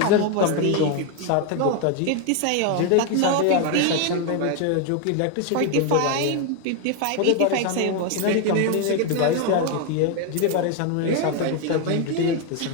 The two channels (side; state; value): both; different; correlation 0.01